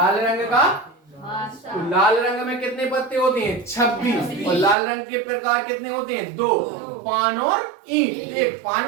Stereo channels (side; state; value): left; drops out; at 4.8 s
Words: रंग का। तो लाल रंग में कितने पत्ते होते हैं? 26। और लाल रंग के प्रकार कितने होते हैं? 2, पान और ईंट। एक